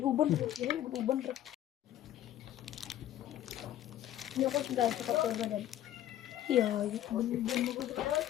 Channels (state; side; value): quieter; right; 12.3 dB